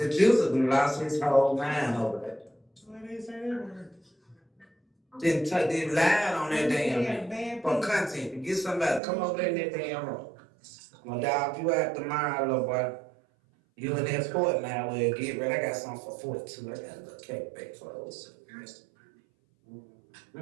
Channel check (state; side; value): drops out; left; at 9.0 s